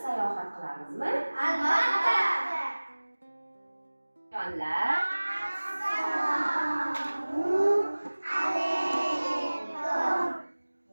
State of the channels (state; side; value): inverted; both; correlation -1.00